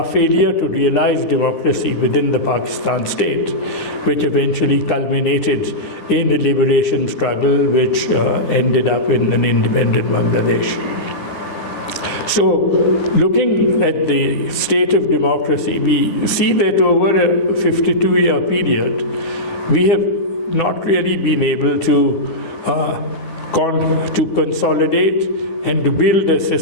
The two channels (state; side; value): late; right; 12 ms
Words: failure to realize democracy within the Pakistan state, which eventually culminated in a liberation struggle which ended up in an independent Bangladesh. So, looking at the state of democracy, we see that over a 52-year period, we have not really been able to consolidate and to build a